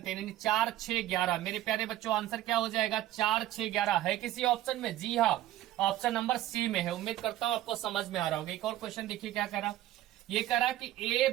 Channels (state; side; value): quieter; left; 14.1 dB